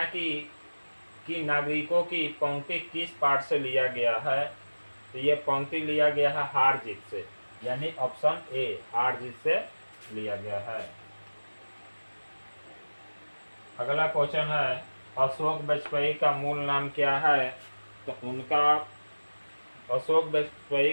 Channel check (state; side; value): inverted; both; correlation -1.00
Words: की नागरिकों की पंक्ति किस पाठ से लिया गया है, तो ये पंक्ति लिया गया है हार जीत से, यानी ऑप्शन ए हार जीत से लिया गया है। अगला क्वेश्चन है, अशोक वाजपेयी का मूल नाम क्या है, तो उनका अशोक वाजपेयी